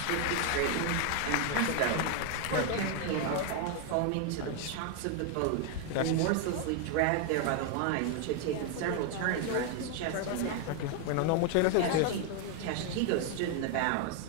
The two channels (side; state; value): both; different; correlation 0.00